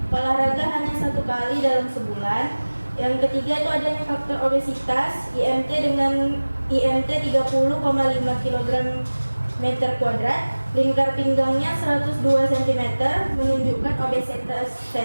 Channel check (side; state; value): both; inverted; correlation -1.00